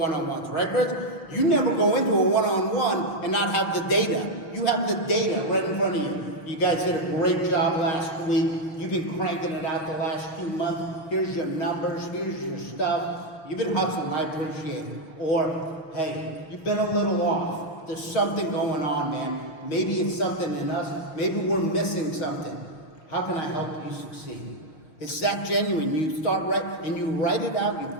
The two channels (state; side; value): late; right; 6.3 ms